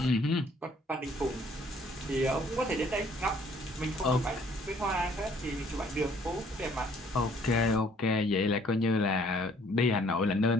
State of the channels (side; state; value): both; normal; correlation 0.60